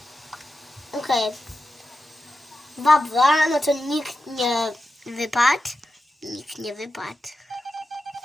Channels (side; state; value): both; normal; correlation 0.90